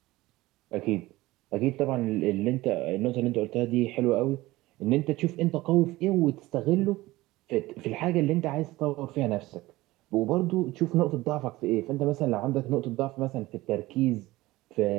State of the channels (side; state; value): left; quieter; 18.7 dB